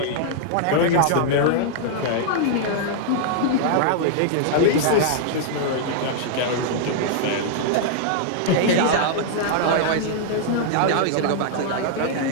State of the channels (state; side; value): different; both; correlation -0.01